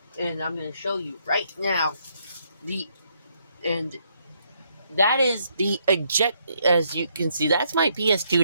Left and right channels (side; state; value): both; inverted; correlation -0.73